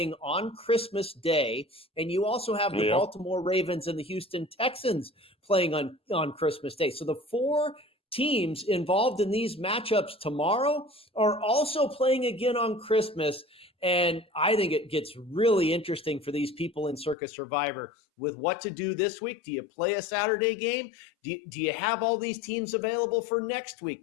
on Christmas Day, and you also have the Baltimore Ravens and the Houston Texans playing on Christmas Day. So the 4 teams involved in these matchups tomorrow are also playing again on Christmas. And I think it gets really interesting for these people in Circus Survivor with what to do this week. Do you play a Saturday game? Do you have all these teams available for next week,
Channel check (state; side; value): drops out; right; at 17.2 s